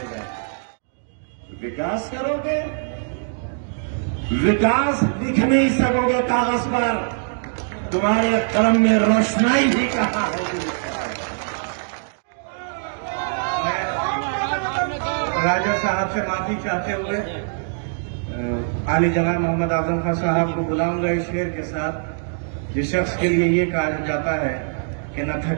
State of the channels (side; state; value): left; silent; digital silence